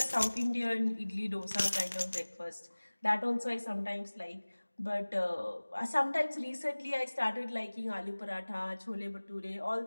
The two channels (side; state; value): both; inverted; correlation -1.00